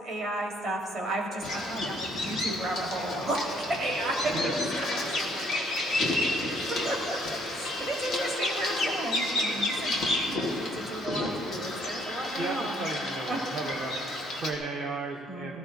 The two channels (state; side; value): normal; both; correlation 0.65